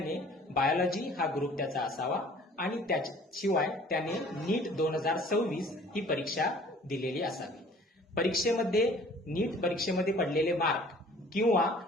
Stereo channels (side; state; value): both; normal; correlation 0.52